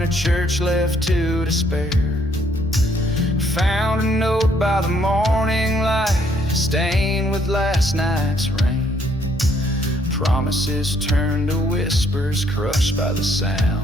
a church left to despair. Found a note by the morning light, stained with last night's rain. Promises turned to whispers, crushed by the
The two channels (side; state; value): both; normal; correlation 0.68